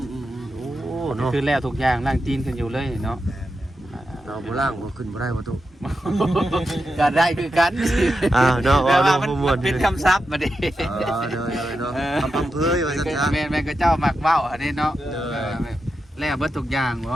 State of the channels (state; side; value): normal; both; correlation 0.88